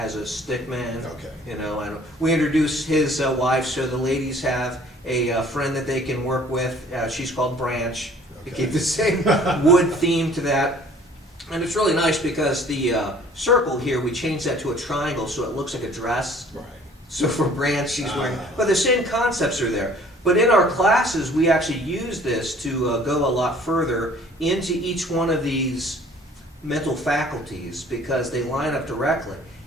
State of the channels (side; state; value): both; normal; correlation 0.53